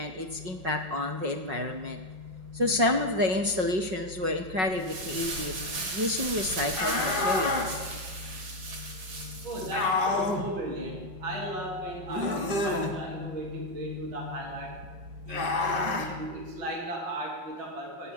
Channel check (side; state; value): left; late; 5.4 ms